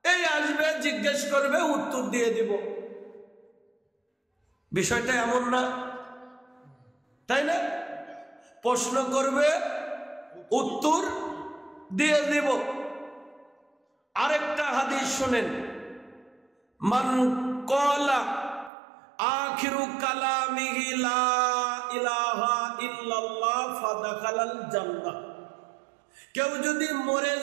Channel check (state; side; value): drops out; left; at 18.7 s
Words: এই আসবে জিজ্ঞেস করবে উত্তর দিয়ে দিব। বিষয়টা এমন না, তাই না? প্রশ্ন করবে উত্তর দিয়ে দিব। আরেকটা হাদিস শুনেন, মান ক্বালা আখিরু কালামিহি লা ইলাহা ইল্লাল্লাহ ফাদাখালাল জান্নাহ। কেউ যদি মরে